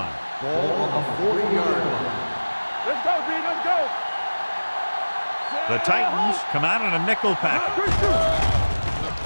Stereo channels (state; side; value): inverted; both; correlation -1.00